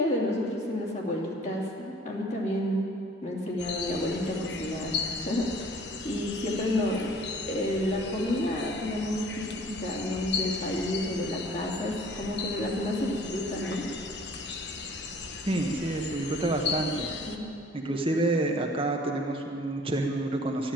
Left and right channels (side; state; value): both; normal; correlation 0.52